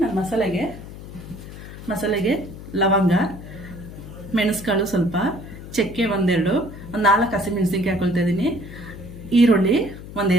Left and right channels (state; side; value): noise; left; hum, 13 dB below the sound